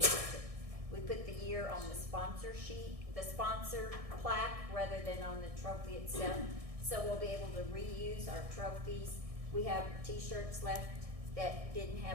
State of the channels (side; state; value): left; late; 1.6 ms